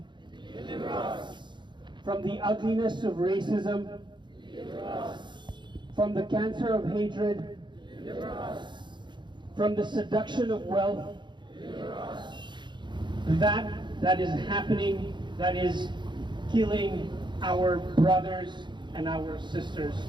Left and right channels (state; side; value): late; left; 0.22 ms